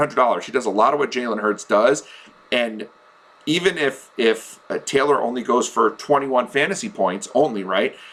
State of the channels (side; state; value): both; identical; correlation 1.00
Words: he does a lot of what Jalen Hurts does. And even if Taylor only goes for 21 fantasy points only, right,